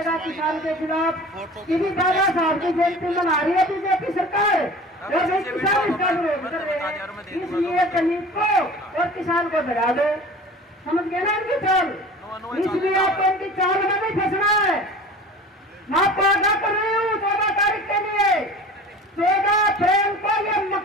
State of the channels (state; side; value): normal; both; correlation 0.40